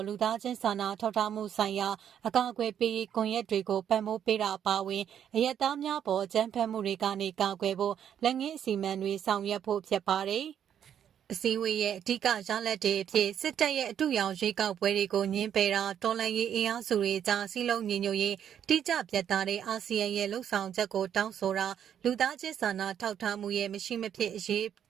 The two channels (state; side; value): quieter; left; 9.2 dB